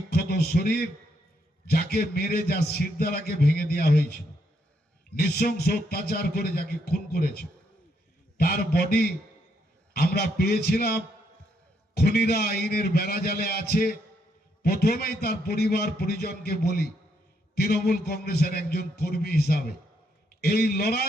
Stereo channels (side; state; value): both; normal; correlation 0.75